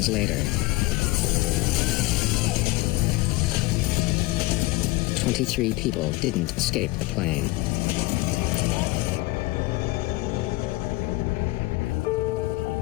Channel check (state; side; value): quieter; right; 20.3 dB